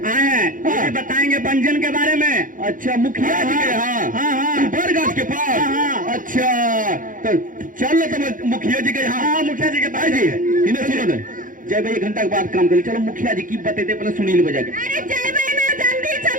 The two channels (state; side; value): late; left; 0.39 ms